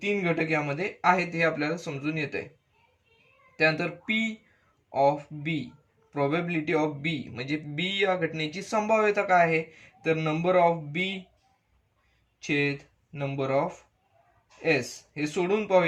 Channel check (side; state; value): both; identical; correlation 1.00